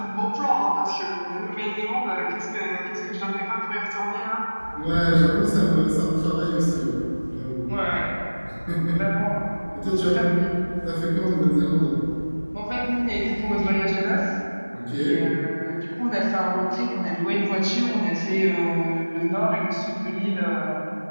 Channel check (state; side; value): inverted; both; correlation -1.00